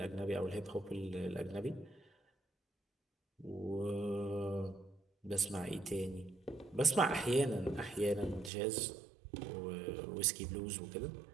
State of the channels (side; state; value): left; drops out; at 8.5 s